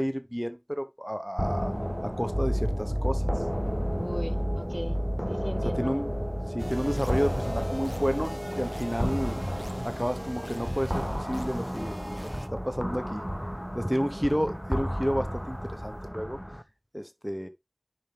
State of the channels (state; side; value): identical; both; correlation 1.00